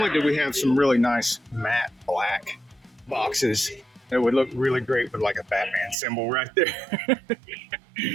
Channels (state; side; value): drops out; left; at 6.0 s